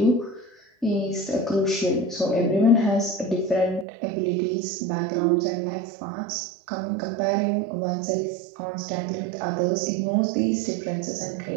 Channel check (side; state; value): left; drops out; at 3.9 s